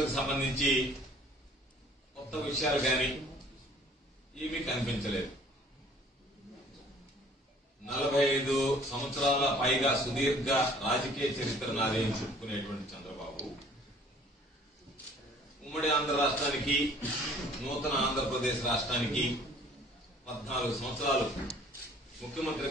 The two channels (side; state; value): both; normal; correlation 0.54